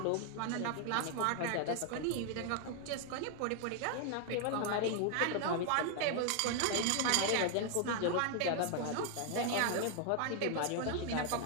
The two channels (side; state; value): both; different; correlation 0.00